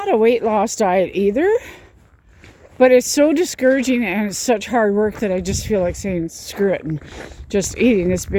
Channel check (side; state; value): both; identical; correlation 1.00